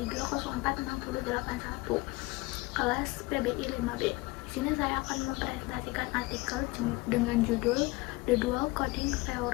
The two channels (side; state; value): right; quieter; 22.6 dB